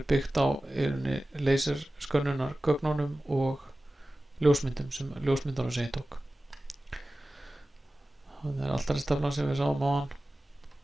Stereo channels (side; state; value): both; normal; correlation 0.96